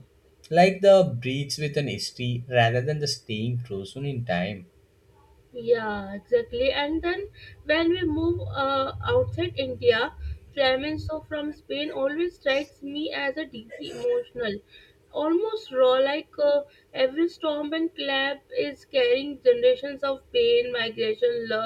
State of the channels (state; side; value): identical; both; correlation 1.00